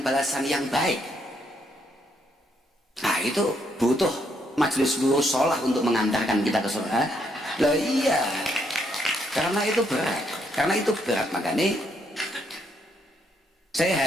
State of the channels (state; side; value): normal; both; correlation 0.74